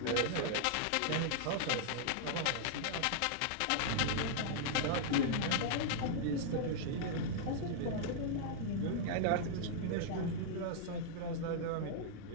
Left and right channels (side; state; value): both; different; correlation -0.01